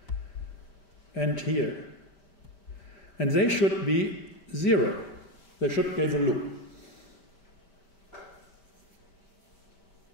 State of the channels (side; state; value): right; late; 5.1 ms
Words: and here. And they should be 0. They should give a loop.